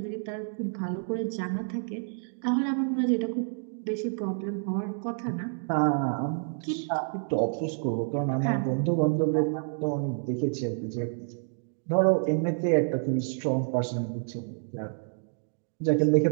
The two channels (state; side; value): silent; left; digital silence